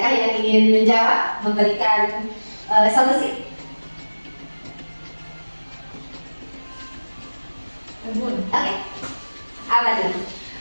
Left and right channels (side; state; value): both; inverted; correlation -1.00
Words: yang ingin menjawab, memberikan solusi? Oke. Apa itu?